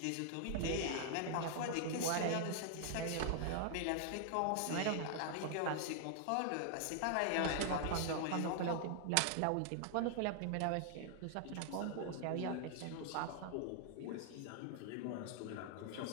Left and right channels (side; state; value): both; different; correlation 0.00